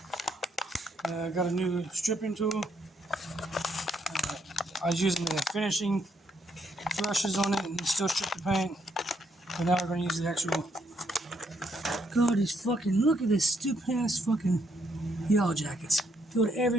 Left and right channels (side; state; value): both; normal; correlation 0.74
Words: Got a new stripping tool. I was using the finishing brushes on it and still strip the paint. But now we're going to use the actual. God, these fucking, look at this stupid ass fucking yellow jackets. Filled